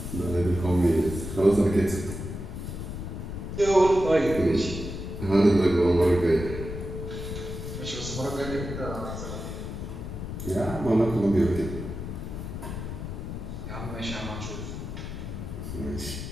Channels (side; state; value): left; noise; rumble, 7 dB below the sound